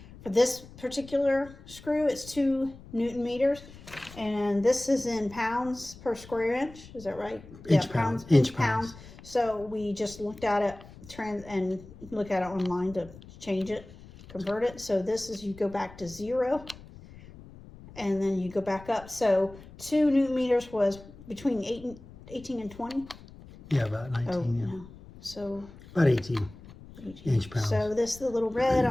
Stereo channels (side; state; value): left; noise; rumble, 19 dB below the sound